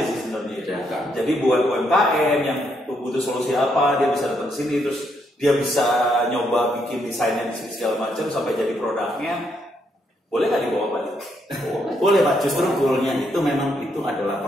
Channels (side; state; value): both; normal; correlation 0.76